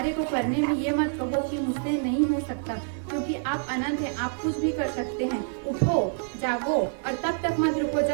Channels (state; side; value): silent; left; 60 dB below the other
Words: को करने में ये मत कहो कि मुझसे नहीं हो सकता, क्योंकि आप अनंत हैं, आप कुछ भी कर सकते हैं। उठो, जागो और तब तक मत रुको